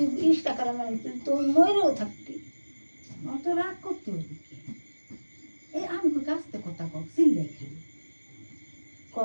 20 টাকার মানে তুই মরেও থাকতি। অত রাগ করতে হবে কি? এই আমি কই কাছতে কথা কও চিল্লাই খালি ক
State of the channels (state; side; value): inverted; both; correlation -1.00